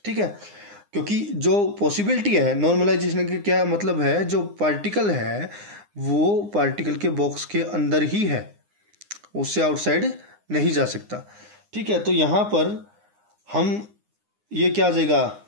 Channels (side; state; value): left; late; 9.8 ms